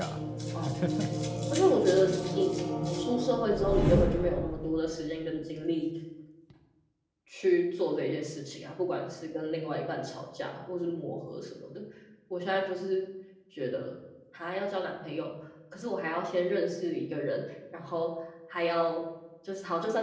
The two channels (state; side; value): identical; both; correlation 1.00